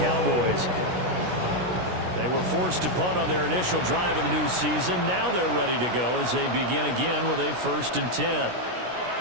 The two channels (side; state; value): left; late; 16 ms